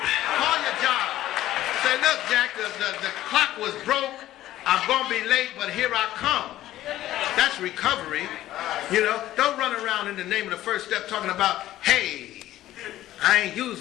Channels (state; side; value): quieter; right; 14.1 dB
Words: your job. Say, look, Jack, the clock was broke. I'm going to be late, but here I come. That's recovery. You know, don't run around in the name of the first step talking about, hey, I ain't